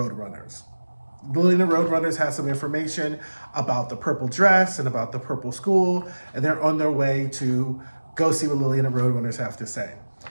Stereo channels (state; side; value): inverted; both; correlation -1.00